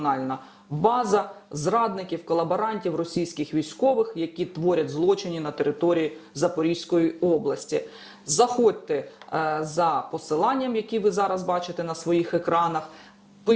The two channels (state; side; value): identical; both; correlation 1.00